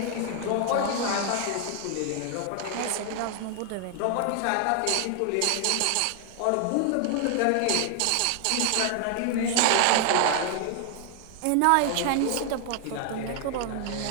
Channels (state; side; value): different; both; correlation 0.00